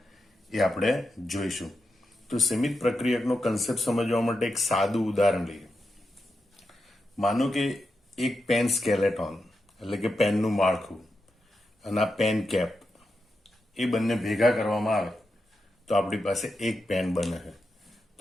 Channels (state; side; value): normal; both; correlation 0.88